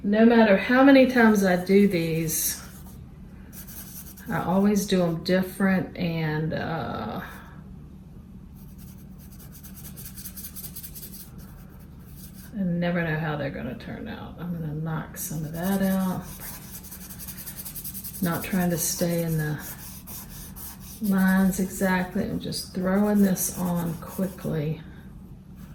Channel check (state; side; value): identical; both; correlation 1.00